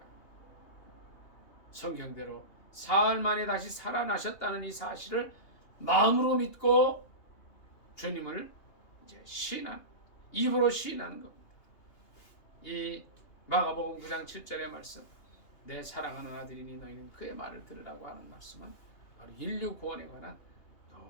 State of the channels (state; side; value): late; right; 2.8 ms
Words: 성경대로 사흘 만에 다시 살아나셨다는 이 사실을 마음으로 믿고 주님을 이제 입으로 시인하는 겁니다. 이 마가복음 9장 7절의 말씀, 내 사랑하는 아들이니 너희는 그의 말을 들으라고 하는 말씀은 바로 인류 구원에 관한